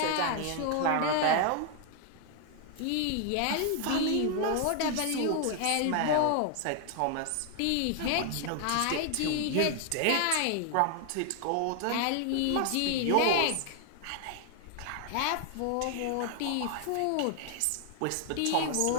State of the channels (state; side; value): different; both; correlation 0.00